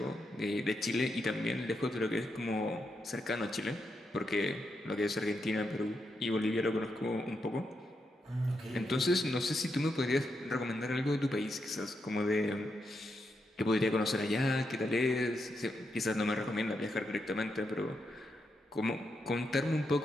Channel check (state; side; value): normal; both; correlation 0.83